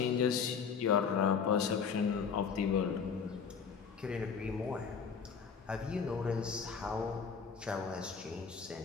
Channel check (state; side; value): quieter; right; 6.2 dB